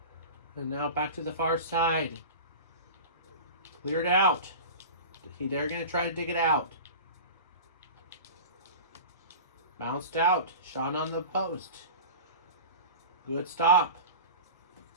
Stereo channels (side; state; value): both; inverted; correlation -0.32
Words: And now back to the far side. Cleared out. They're going to try to dig it out. Bounced out. Shot on the post. Good stop.